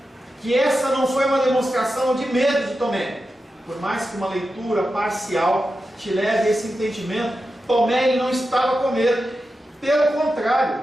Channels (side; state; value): both; normal; correlation 0.91